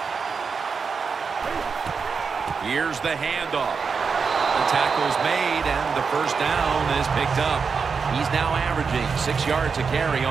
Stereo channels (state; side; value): quieter; left; 5.4 dB